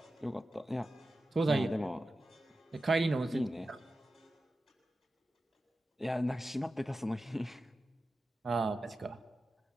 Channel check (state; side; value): normal; both; correlation 0.93